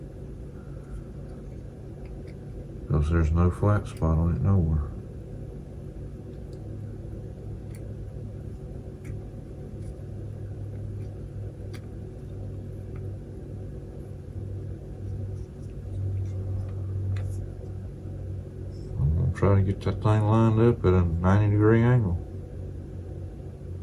because there's no flat spot on it nowhere. I'm gonna try to get that thing lined up at a 90-degree angle.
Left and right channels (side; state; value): both; identical; correlation 1.00